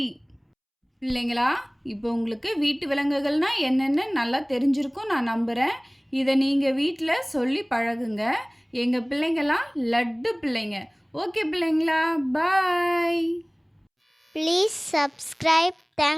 பிள்ளைங்களா, இப்போ உங்களுக்கு வீட்டு விலங்குகள்னா என்னென்னு நல்லா தெரிஞ்சிருக்கும் நான் நம்புகிறேன். இதை நீங்கள் வீட்டில் சொல்லி பழகுங்க. எங்கள் பிள்ளைங்களாம் லட்டு பிள்ளைங்க. ஓகே பிள்ளைங்களா, பாய். Please subscribe.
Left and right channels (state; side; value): identical; both; correlation 1.00